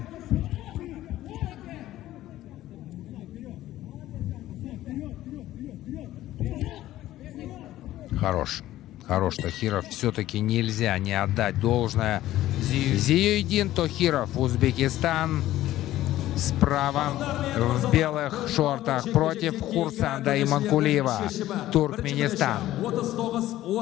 Хорош Тохиров. Все-таки нельзя не отдать должное. Зиюдин Тохиров, Узбекистан. Справа в белых шортах против Хурсанда Иманкулиева, Туркменистан.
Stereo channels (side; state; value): right; quieter; 14.5 dB